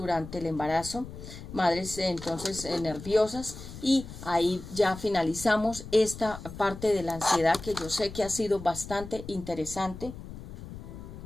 el embarazo, madres entonces nerviosas, y ahí ya finalizamos esta parte de la ansiedad, que yo sé que ha sido bastante interesante.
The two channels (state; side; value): noise; left; rumble, 12 dB below the sound